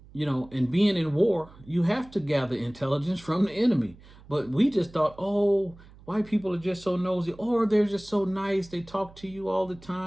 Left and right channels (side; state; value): right; noise; hum, 22 dB below the sound